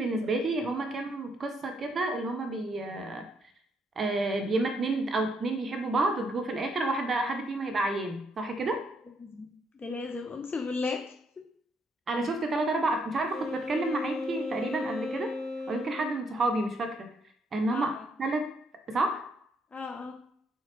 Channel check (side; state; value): both; normal; correlation 0.73